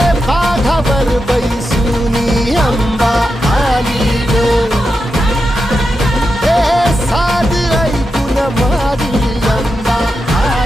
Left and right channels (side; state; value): both; normal; correlation 0.88